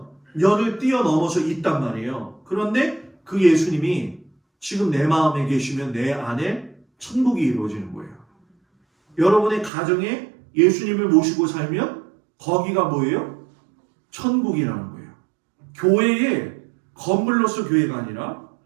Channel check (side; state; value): left; drops out; at 9.7 s